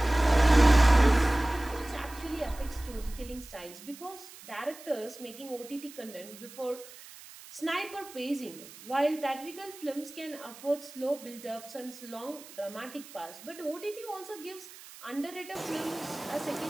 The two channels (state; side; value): noise; right; hiss, 18 dB below the sound